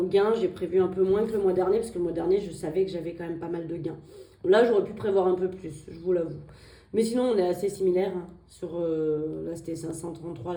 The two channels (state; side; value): identical; both; correlation 1.00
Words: gain, j'ai prévu un peu moins que le mois dernier. Parce que le mois dernier, je savais que j'avais quand même pas mal de gains. Là, j'aurais pu prévoir un peu plus, je vous l'avoue. Mais sinon, on est assez similaires. Là, c'était 533,